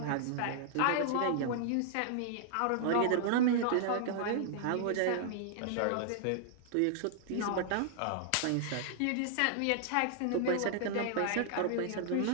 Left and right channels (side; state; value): both; different; correlation -0.01